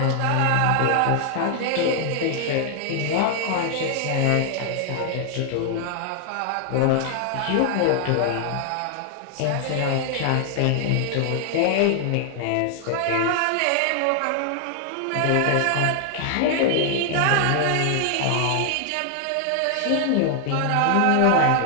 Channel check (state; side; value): different; both; correlation 0.00